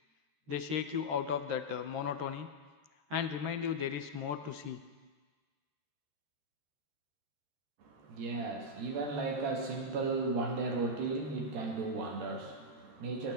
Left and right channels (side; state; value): left; late; 13 ms